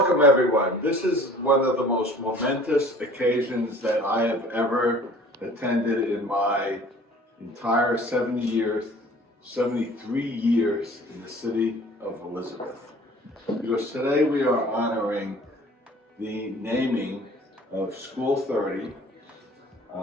everyone. This is one of the most momentous occasions that I have ever attended in my entire 73 years in the city of Elizabeth. Because today we are honoring the naming of School 30,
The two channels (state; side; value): normal; both; correlation 0.48